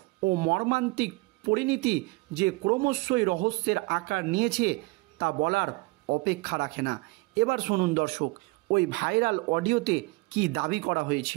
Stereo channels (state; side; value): quieter; left; 24.8 dB